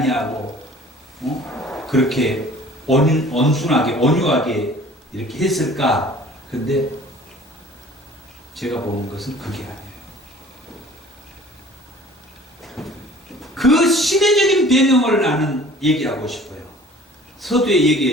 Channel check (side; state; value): both; normal; correlation 0.48